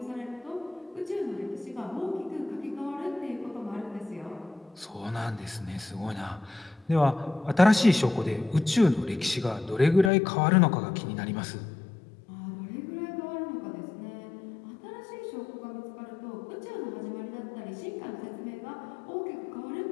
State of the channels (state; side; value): drops out; right; at 10.1 s